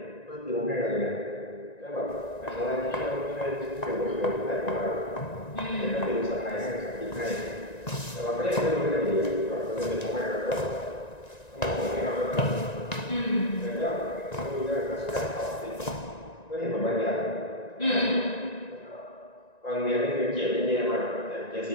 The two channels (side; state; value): right; late; 1.9 ms